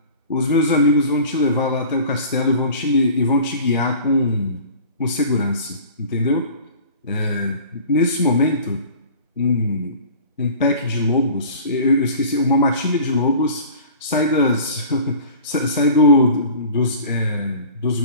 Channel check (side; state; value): both; inverted; correlation -0.43